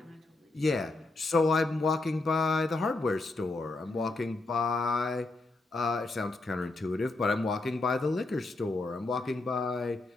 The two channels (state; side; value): quieter; right; 3.1 dB